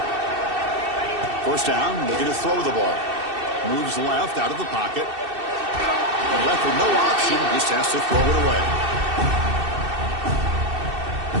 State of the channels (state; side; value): late; left; 2.6 ms